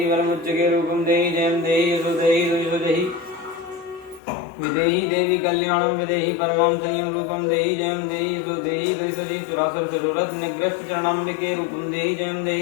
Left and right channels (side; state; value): right; drops out; at 4.2 s